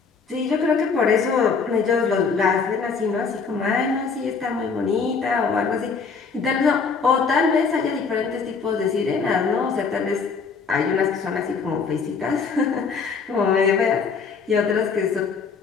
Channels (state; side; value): quieter; right; 5.3 dB